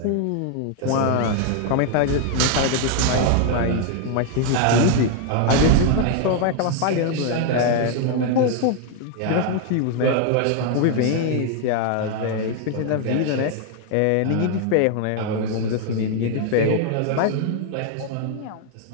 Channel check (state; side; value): different; both; correlation 0.00